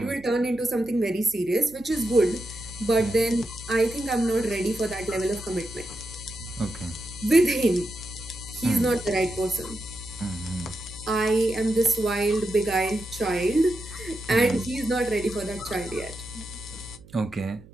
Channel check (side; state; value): right; noise; hum, 22 dB below the sound